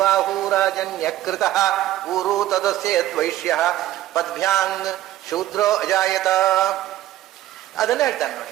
ಊರು ತದಸ್ಯದ್ವೈಶ್ಯ ಪದ್ಭ್ಯಾಂಗ್ ಶೂದ್ರೋ ಅಜಾಯತ. ಅದನ್ನ ಹೇಳ್ತಾನೆ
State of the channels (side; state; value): left; quieter; 14.0 dB